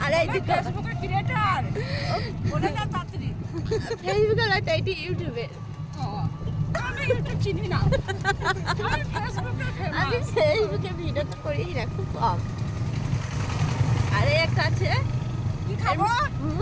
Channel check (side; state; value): both; identical; correlation 1.00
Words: আর এইদিকে ফেসবুকের ক্রিয়েটর, বলে না তাড়াতাড়ি। ফেসবুকের না, এটা ইউটিউবে। আমি ইউটিউব চিনি না, আমি ফেসবুকে ভিডিও তো করি না, খুব কম। আরে একটা আছে, কি খাবো?